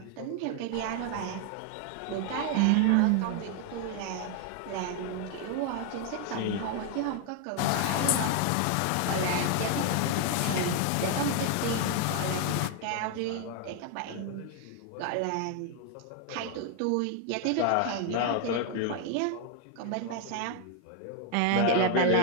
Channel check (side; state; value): both; different; correlation 0.00